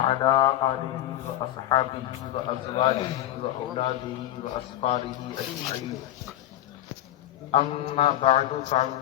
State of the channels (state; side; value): quieter; right; 13.3 dB